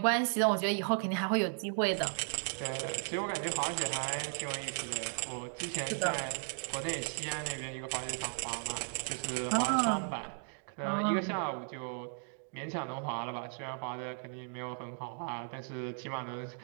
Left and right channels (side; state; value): left; silent; 54 dB below the other